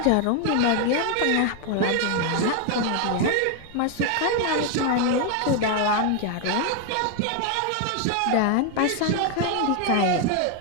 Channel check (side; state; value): both; different; correlation 0.01